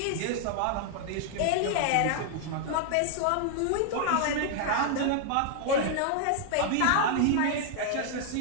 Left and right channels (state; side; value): different; both; correlation 0.00